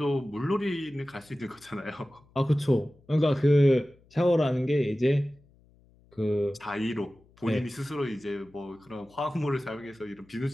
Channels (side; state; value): left; noise; hum, 30 dB below the sound